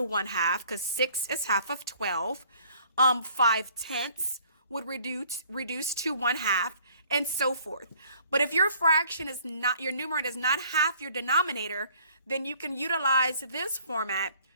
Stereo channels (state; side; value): inverted; both; correlation -0.57